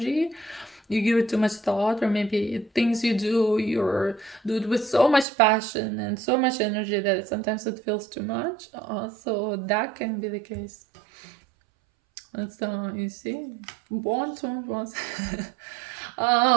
you give it too much thought, or maybe things you do, do it with so much passion and so much energy that sometimes it feels too much. So that can be the case. That's you see, want.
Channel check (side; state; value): left; drops out; at 5.2 s